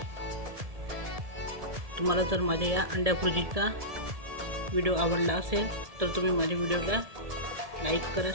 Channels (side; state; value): left; late; 1.7 ms